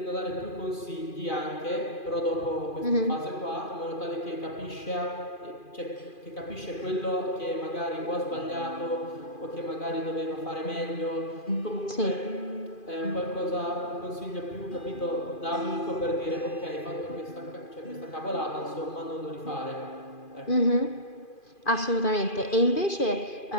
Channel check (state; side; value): late; right; 2.4 ms